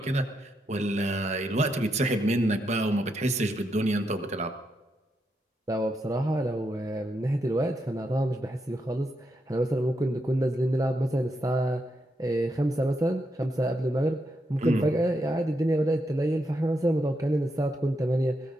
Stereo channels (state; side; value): normal; both; correlation 0.82